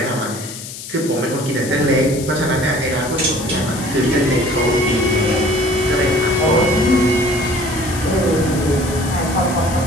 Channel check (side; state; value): left; noise; hiss, 11 dB below the sound